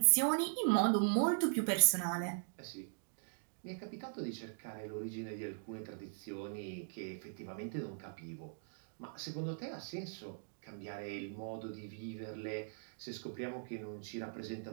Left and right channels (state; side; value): silent; left; digital silence